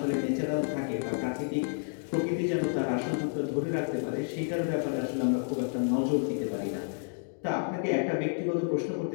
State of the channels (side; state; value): right; silent; digital silence